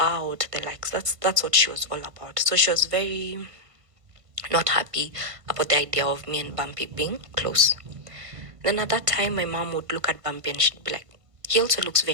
the likes. That's what she was all about. So she was very not happy about the idea of me and Bumpy being close. Then at that time, my mom would look at Bumpy and she'd be like, he also looks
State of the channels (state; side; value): late; left; 1.6 ms